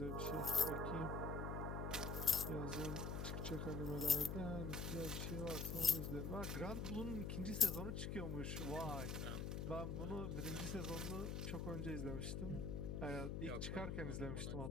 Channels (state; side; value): noise; left; hum, 2 dB below the sound